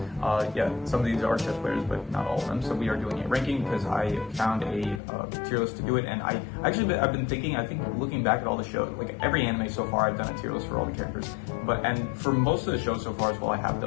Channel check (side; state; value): right; drops out; at 5.0 s